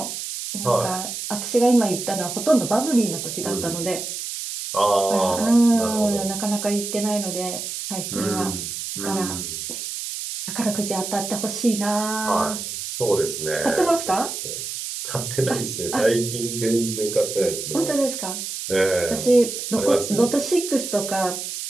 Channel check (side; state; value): right; noise; hiss, 6 dB below the sound